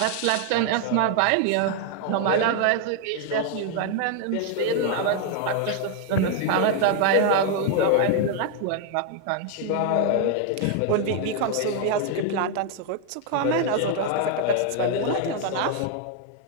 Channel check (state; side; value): different; both; correlation 0.00